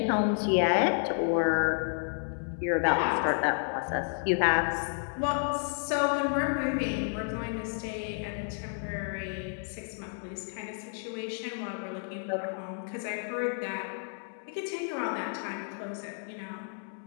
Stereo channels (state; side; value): silent; right; 57 dB below the other